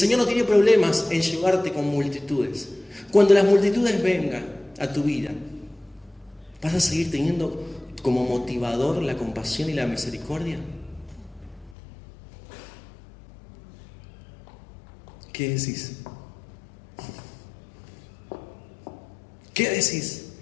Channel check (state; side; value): drops out; right; at 11.8 s